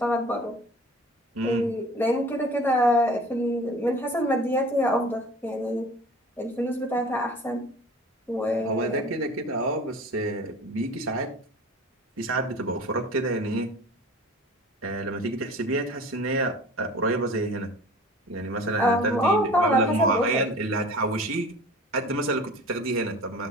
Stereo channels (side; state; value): both; normal; correlation 0.42